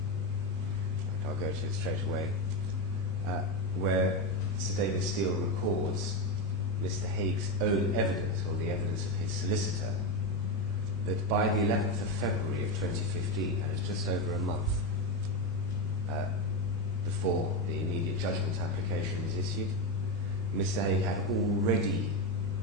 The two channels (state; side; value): normal; both; correlation 0.12